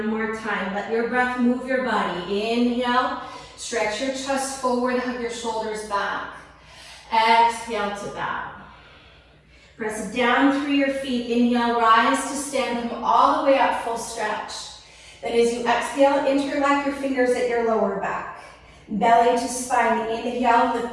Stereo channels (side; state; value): both; identical; correlation 1.00